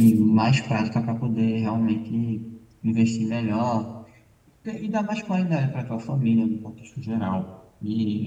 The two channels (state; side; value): identical; both; correlation 1.00